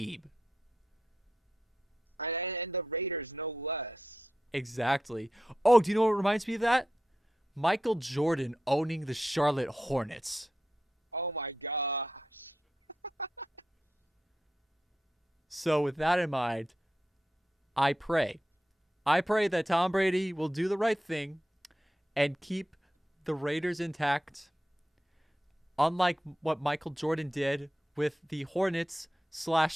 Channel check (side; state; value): both; normal; correlation 0.87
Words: And the Raiders no less. Exactly. Oh, do you know what reminds me of that? Michael Jordan owning the Charlotte Hornets. Oh my gosh. So with that in mind, I pray. I pray that Tom Brady will do the right thing and keep the Raiders intact, unlike what Michael Jordan did with the Hornets /